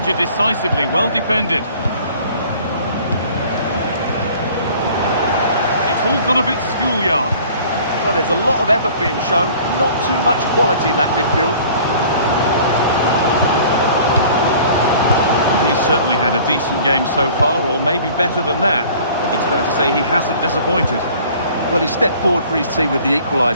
decisively. Well defended. It's all gone a bit schoolyard. Well, there's a lot of effort being shown, not too much quality in that midfield. He's certainly had a decent game so far, or maybe better than that. It's fair to say he hasn't disappointed. Well, he stepped forward for his team with the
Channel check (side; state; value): both; inverted; correlation -0.49